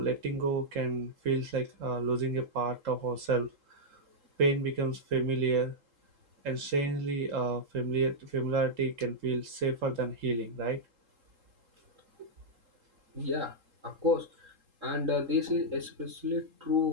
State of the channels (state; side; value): late; left; 3.8 ms